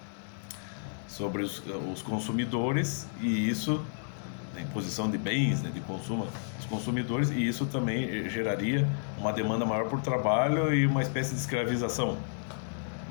os consumidores, e isso, a imposição de bens, né, de consumo dos consumidores, e isso também geraria uma demanda maior por trabalho e uma espécie de escravização,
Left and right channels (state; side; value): silent; right; digital silence